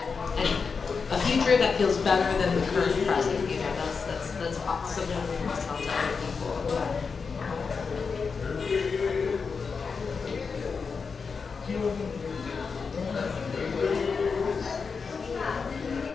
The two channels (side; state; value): right; quieter; 5.2 dB